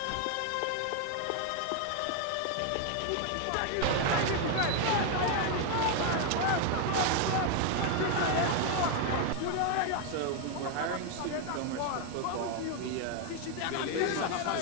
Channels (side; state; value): both; different; correlation 0.01